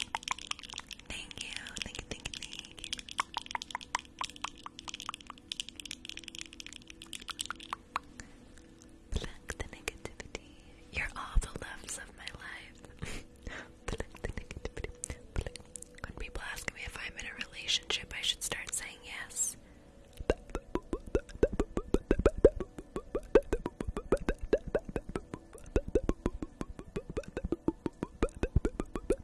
Thank you, thank you, thank you, thank you. Pluck the negativity. You're all the loves of my life. Pluck the negativity. Pluck. When people ask me if I'm in a relationship, I should start saying yes.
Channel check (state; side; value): identical; both; correlation 1.00